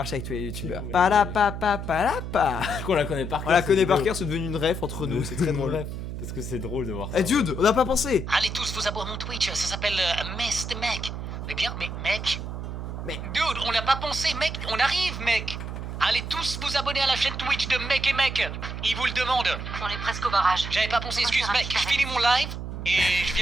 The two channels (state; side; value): noise; right; hum, 6 dB below the sound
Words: avec tous les youtubeurs. Ouais, Palapa. Du coup, on la connaît par cœur. On la cette connaît par vidéo. cœur, c'est devenu une ref entre nous, c'est très drôle. Bref, parce que c'est drôle de voir ça. Eh dude, on n'a pas pensé. Allez tous vous abonner à mon Twitch, ça s'appelle Mest Mec. Mais bien, mais mec. Mais- Dude, on l'a pas pensé, mec, on arrive, mec. Allez tous vous abonner à la chaîne Twitch de Mec et Mec. Il vous le demande. On est presque au barrage. J'avais pas pensé, excuse mec, je finis mon live et je